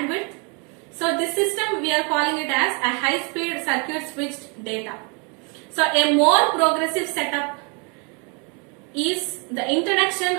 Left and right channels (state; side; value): quieter; left; 34.4 dB